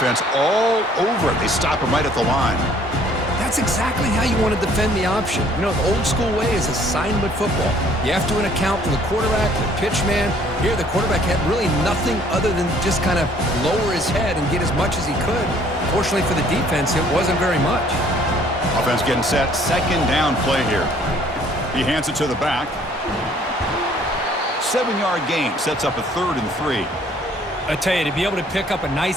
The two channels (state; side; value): normal; both; correlation 0.59